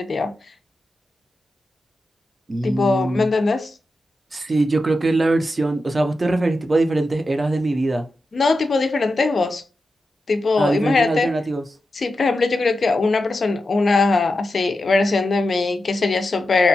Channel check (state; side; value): normal; both; correlation 0.90